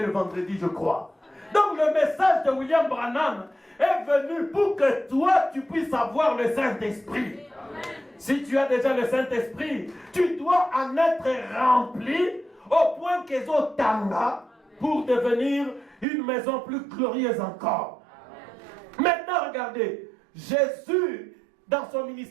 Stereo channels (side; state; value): left; drops out; at 16.1 s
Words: le vendredi, je crois. Donc le message de William Branham est venu pour que toi, tu puisses avoir le Saint-Esprit. Si tu as déjà le Saint-Esprit, tu dois en être rempli au point qu'ils ont tanga pour devenir une maison plus glorieuse encore. Maintenant, regardez, Jésus, dans son